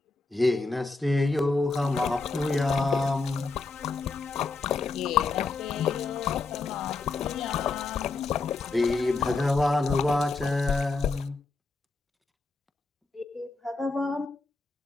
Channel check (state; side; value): quieter; right; 3.8 dB